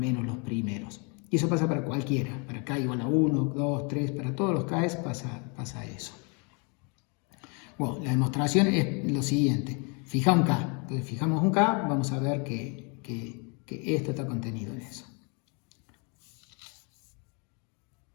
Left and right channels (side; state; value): right; quieter; 33.9 dB